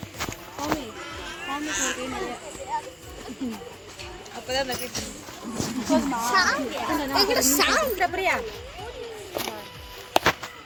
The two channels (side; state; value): both; identical; correlation 1.00